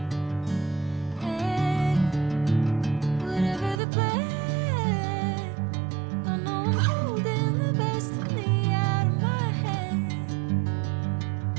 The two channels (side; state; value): left; drops out; at 3.8 s